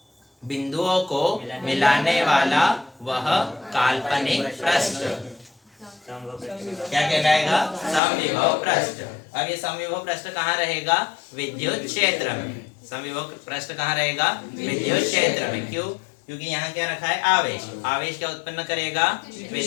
बिंदुओं को मिलाने वाला वह काल्पनिक पृष्ठ क्या कहलाएगा? समविभव पृष्ठ। अब ये समविभव पृष्ठ कहाँ रहेगा? विद्युत क्षेत्र में। समविभव पृष्ठ कहाँ रहेगा? विद्युत क्षेत्र में। क्यों? क्योंकि यहाँ क्या रखा है? आवेश। आवेश क्या उत्पन्न करेगा?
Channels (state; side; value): drops out; right; at 8.0 s